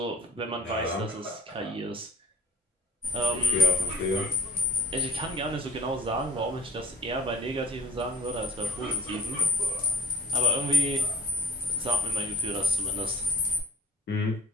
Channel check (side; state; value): both; normal; correlation 0.47